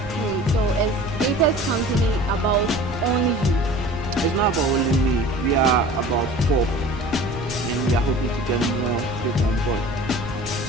Okay, so is Apex company about only you? It's not about only me. We are about 4, and we are hoping to get more people on board.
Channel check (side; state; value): both; normal; correlation 0.42